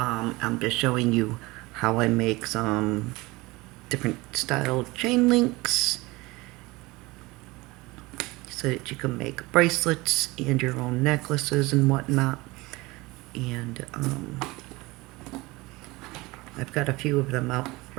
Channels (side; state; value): left; quieter; 22.1 dB